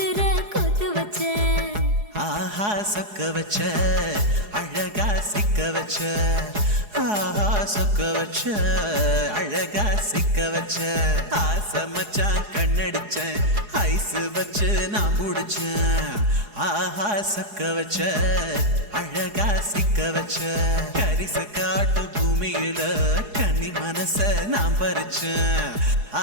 கொத்து வச்ச ஆஹா சொக்க வச்ச அழகா சிக்க வச்ச ஆஹா சொக்க வச்ச அழகா சிக்க வச்ச ஆசை மச்சான் கண்ணடிச்சேன் ஐஸ் வச்சு நான் முடிச்சேன் ஆஹா சொக்க வச்ச அழகா சிக்க வச்ச கரிச காட்டு பூமியில கன்னி மனச நான் பறிச்சேன்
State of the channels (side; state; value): left; late; 4.8 ms